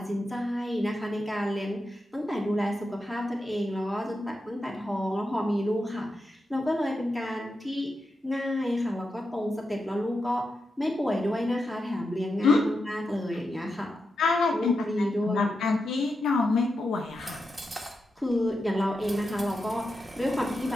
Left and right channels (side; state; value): both; normal; correlation 0.88